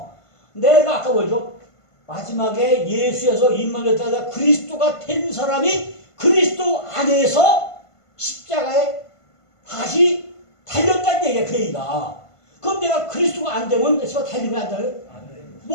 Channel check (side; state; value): right; late; 1.5 ms